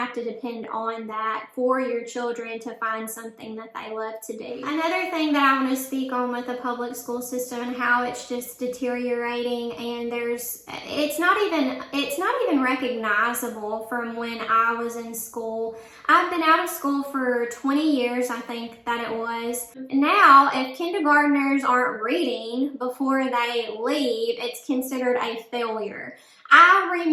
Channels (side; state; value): both; identical; correlation 1.00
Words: to depend on that for your children to find something that they love to do. Another thing that I want to speak on with the public school system and how it's just deteriorating, and it's not even recognizable from when I was in school. I've been out of school for 20 years, I think that it was. Now, if kindergartners aren't reading before they leave, it's considered a failure. I